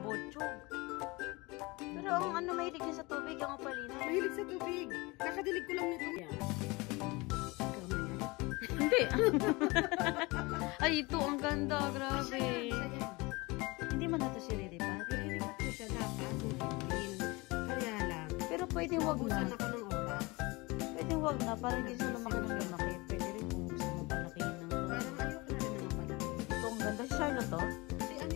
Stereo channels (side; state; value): right; quieter; 24.4 dB